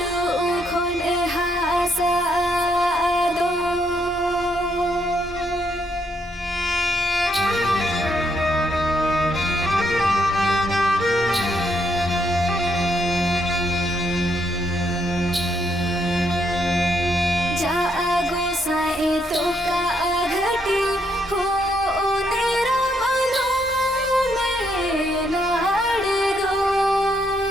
खोले हासा दो जागो साए तो का घटी हो नेरा मनो में नाड़ दो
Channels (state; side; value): normal; both; correlation 0.74